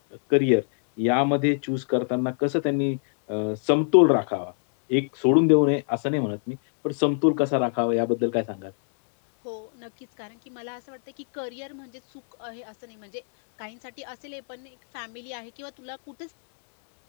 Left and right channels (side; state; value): right; silent; digital silence